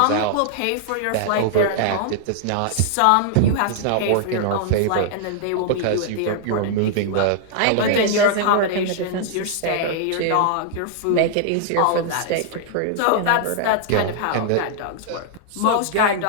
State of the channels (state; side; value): different; both; correlation -0.01